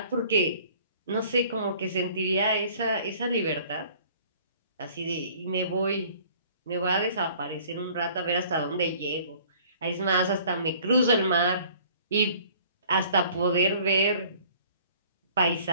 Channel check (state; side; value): inverted; both; correlation -0.53